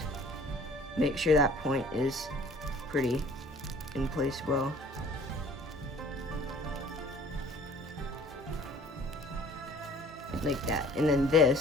Make sure that point is pretty in place well. Like that. And then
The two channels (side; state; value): both; normal; correlation 0.51